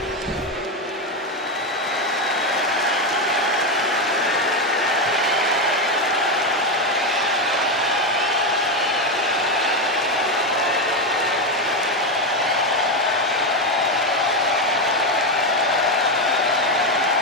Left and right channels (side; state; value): both; normal; correlation 0.10